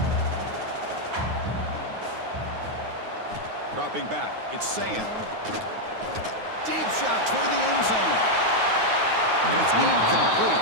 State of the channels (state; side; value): late; left; 9.5 ms